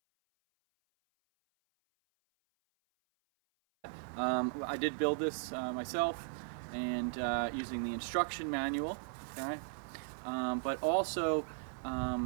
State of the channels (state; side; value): silent; left; 53 dB below the other